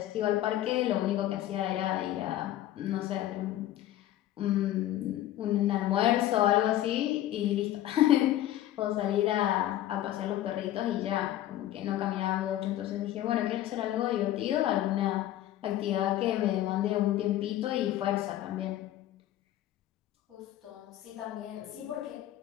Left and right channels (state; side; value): quieter; right; 13.3 dB